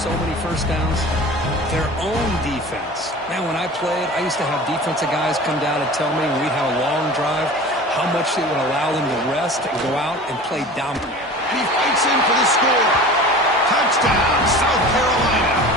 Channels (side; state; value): both; normal; correlation 0.38